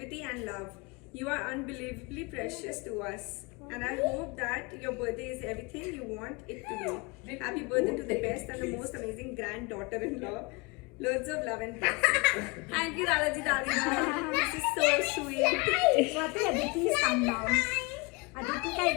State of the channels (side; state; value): right; quieter; 27.6 dB